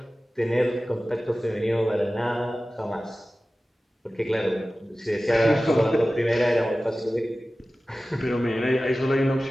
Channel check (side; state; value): both; normal; correlation 0.96